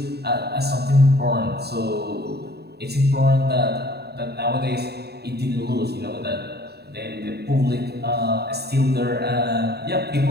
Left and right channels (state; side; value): late; left; 0.47 ms